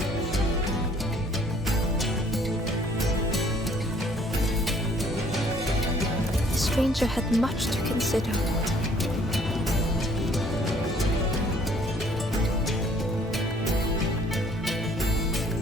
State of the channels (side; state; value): both; normal; correlation 0.59